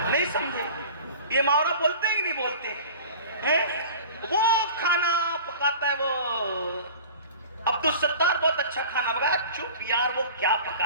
نہیں سمجھے؟ یہ محاورہ بولتے ہیں کہ نہیں بولتے ہیں؟ وہ کھانا پکاتا ہے، وہ عبدالستار بہت اچھا کھانا پکایا، چپ یار وہ کیا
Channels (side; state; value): both; inverted; correlation -0.40